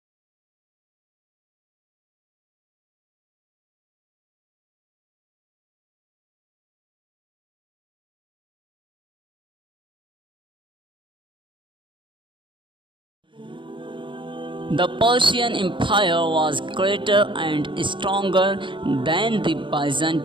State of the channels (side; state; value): left; late; 0.24 ms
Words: The Persian Empire was greater and stronger than the